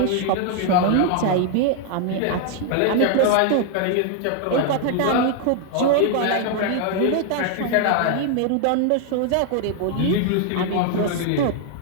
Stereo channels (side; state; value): both; different; correlation 0.00